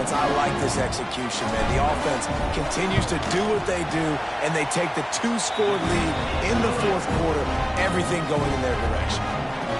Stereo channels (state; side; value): identical; both; correlation 1.00